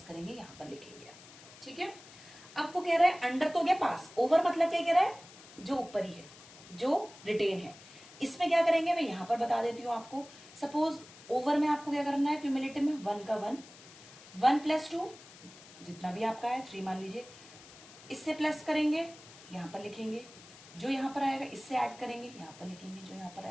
करेंगे, यहाँ पर लिखेंगे, ठीक है। अब वो कह रहा है अंडर तो गया पास, ओवर मतलब क्या कह रहा है, जो ऊपर ही है, जो रिटेन है। इसमें क्या करेंगे, मैं यहाँ पर बता देती हूँ आपको। सपोज ओवर में आपको क्या करना है, क्यूमुलेटिव में 1 का 1, 1 + 2 जितना भी आपका है 3 मान लीजिए, इससे प्लस करेंगे, यहाँ पर लिखेंगे, जो यहाँ पर आएगा इससे ऐड करेंगे, यहाँ पर लिखेंगे, जो यहाँ पर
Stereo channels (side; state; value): left; noise; hiss, 20 dB below the sound